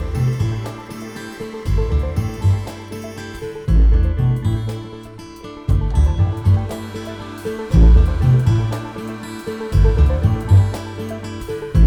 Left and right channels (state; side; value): identical; both; correlation 1.00